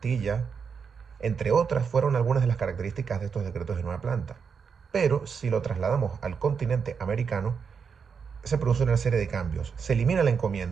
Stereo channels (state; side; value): quieter; left; 6.1 dB